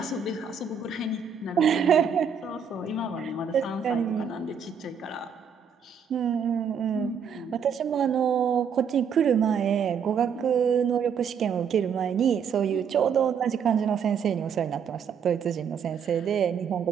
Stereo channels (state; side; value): quieter; left; 6.8 dB